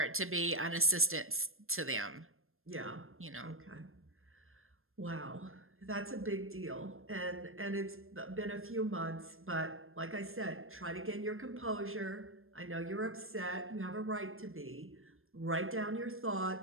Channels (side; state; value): left; late; 0.60 ms